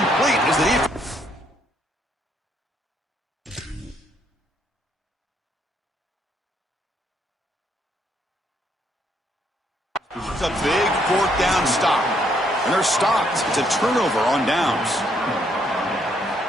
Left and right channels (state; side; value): normal; both; correlation 0.71